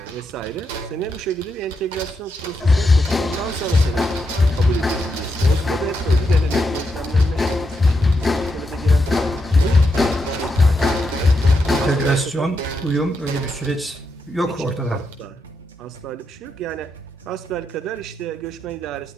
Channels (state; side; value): normal; both; correlation 0.83